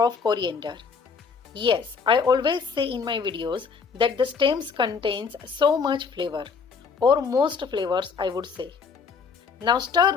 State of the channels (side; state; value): right; quieter; 5.4 dB